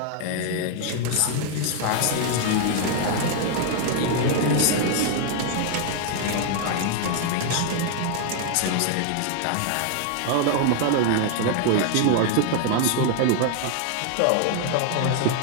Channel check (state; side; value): different; both; correlation 0.00